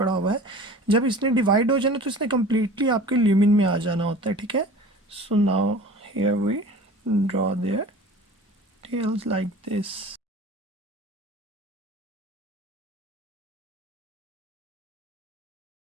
हुआ है, जब इसने डिवाइड हो जाना तो इसने कम्प्लीटली आपके ल्यूमिन में आ जाना होता है, ठीक है। So now here we draw their tails like this.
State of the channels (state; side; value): normal; both; correlation 0.41